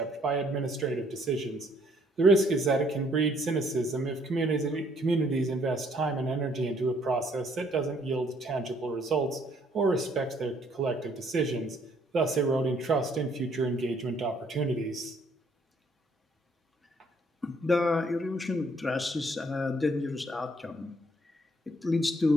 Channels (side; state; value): both; normal; correlation 0.66